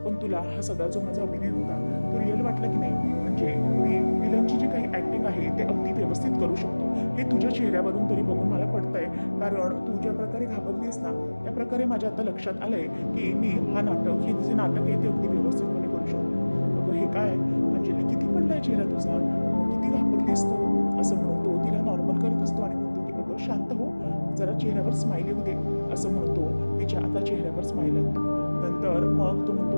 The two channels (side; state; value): both; inverted; correlation -1.00